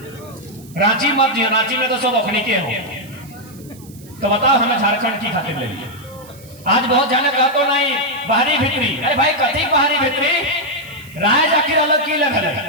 रांची मत दियो, रांची में तो सब अखनी के हो। तो बताओ हमें झारखंड की खातिर ले लिए। आज बहुत जाने कहा तो नहीं बाहरी भीतरी, अरे भाई कथी बाहरी भीतरी, राज आखिर अलग की लग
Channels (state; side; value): noise; right; hiss, 23 dB below the sound